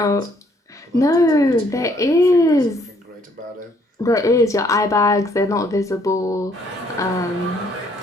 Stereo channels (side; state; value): both; normal; correlation 0.66